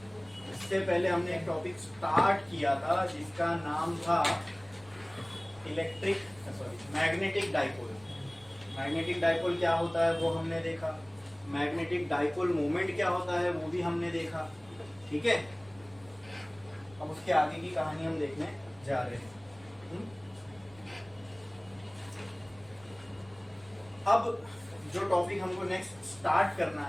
इससे पहले हमने एक टॉपिक स्टार्ट किया था जिसका नाम था मैग्नेटिक डाइपोल। मैग्नेटिक डाइपोल क्या होता है वो हमने देखा, मैग्नेटिक डाइपोल मोमेंट क्या होता है वो भी हमने देखा, ठीक है। अब उसके आगे की कहानी हम देखने जा रहे हैं। अब जो टॉपिक हमको नेक्स्ट स्टार्ट करना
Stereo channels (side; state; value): right; noise; rumble, 25 dB below the sound